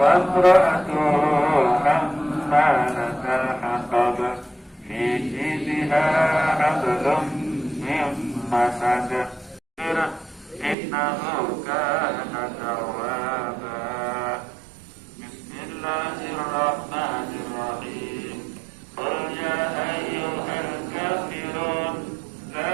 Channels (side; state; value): left; drops out; at 10.8 s